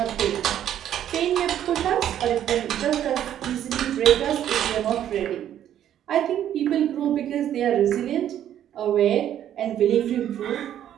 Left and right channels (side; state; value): left; quieter; 10.8 dB